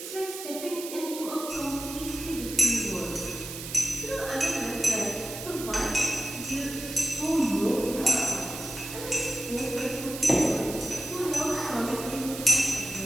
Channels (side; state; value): right; noise; hiss, 9 dB below the sound